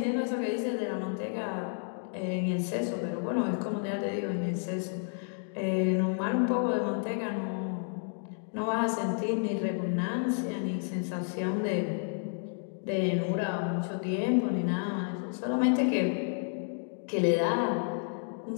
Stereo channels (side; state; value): right; silent; 57 dB below the other